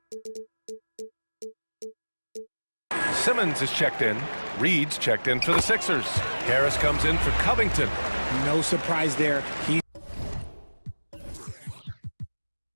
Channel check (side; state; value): both; inverted; correlation -1.00